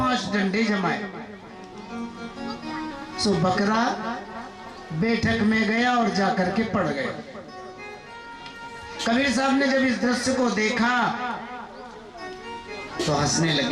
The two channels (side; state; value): both; identical; correlation 1.00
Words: डंडे जमाए। सो बकरा बैठक में गया और जाकर के पड़ गया। कबीर साहब ने जब इस दृश्य को देखा तो हंसने